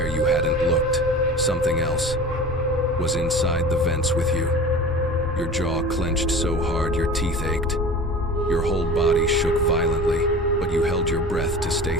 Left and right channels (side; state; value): both; normal; correlation 0.37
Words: you hadn't looked, something else was inside the vents with you. Your jaw clenched so hard your teeth ached. Your whole body shook violently, but you held your breath to stay